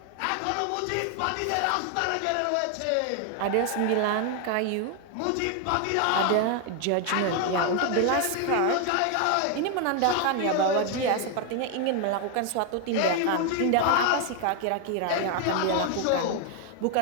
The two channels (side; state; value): both; different; correlation 0.01